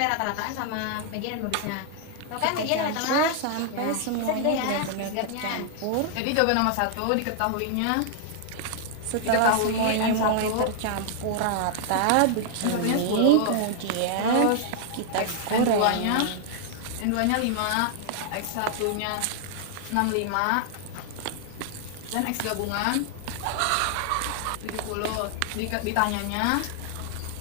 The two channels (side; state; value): both; different; correlation 0.00